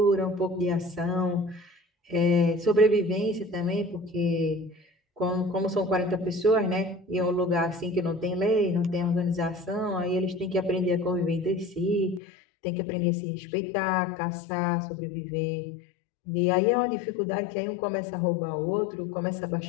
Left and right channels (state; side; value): drops out; right; at 12.2 s